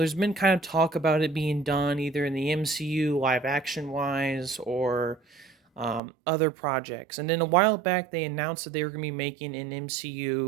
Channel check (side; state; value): left; drops out; at 6.0 s